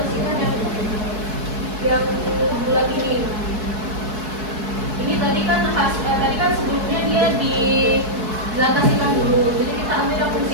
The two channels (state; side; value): late; left; 4.7 ms